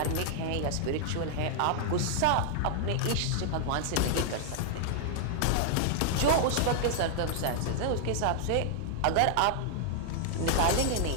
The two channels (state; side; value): different; both; correlation -0.01